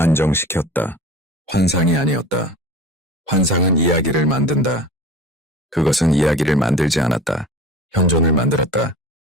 환상이 아니었다. 환상은 이야기를 만든다. 그것은 이야기를 만들지 않았다. 현존을 만들었다.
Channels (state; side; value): normal; both; correlation 0.37